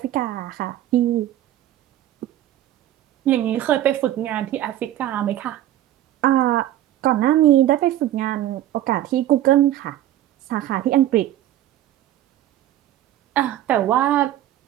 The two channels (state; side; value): quieter; left; 13.0 dB